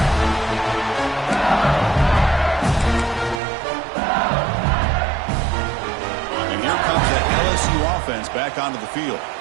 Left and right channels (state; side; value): drops out; left; at 3.4 s